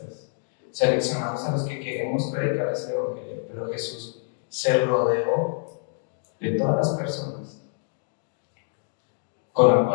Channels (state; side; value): silent; right; 61 dB below the other